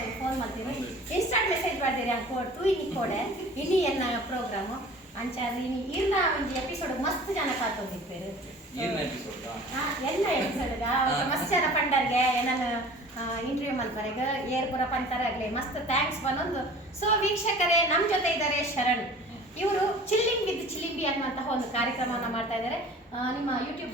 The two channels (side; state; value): both; normal; correlation 0.44